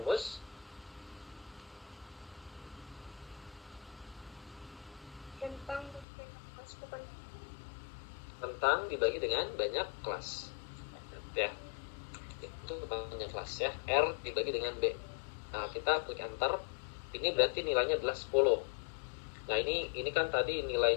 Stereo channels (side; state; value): right; drops out; at 6.1 s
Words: tentang dibagi dengan banyak kelas ya, itu panjang kelas ya, R dibagi dengan B. Nah, kita klik enter, ini berarti nilainya adalah 10. Nah, ini kan tadi